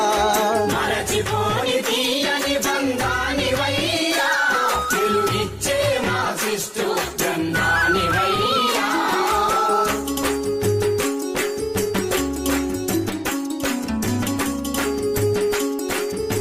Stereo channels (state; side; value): identical; both; correlation 1.00